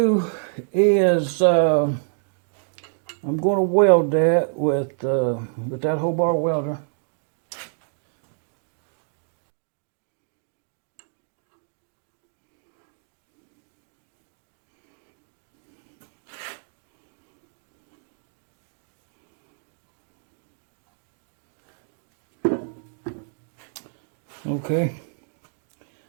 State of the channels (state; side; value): silent; left; digital silence